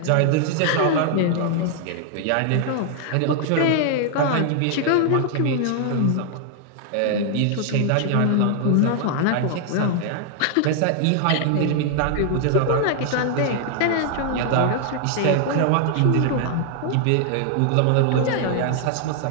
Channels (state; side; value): different; both; correlation 0.00